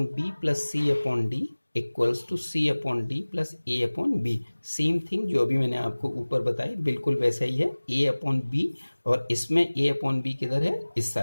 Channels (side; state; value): both; inverted; correlation -1.00